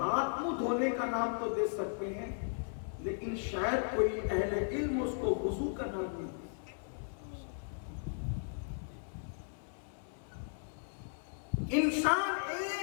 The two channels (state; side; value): silent; right; 54 dB below the other